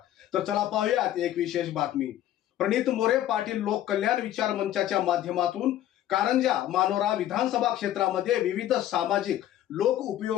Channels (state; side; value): quieter; right; 12.5 dB